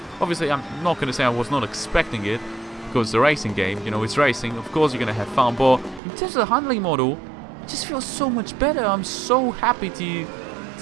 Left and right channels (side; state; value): left; drops out; at 6.0 s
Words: Obviously, I'm not going to say I was not expecting it, because it's a racing game, you know, it's racing. Of course you're going to have fun, but in terms of the handling model, it just feels so much better. I'm so happy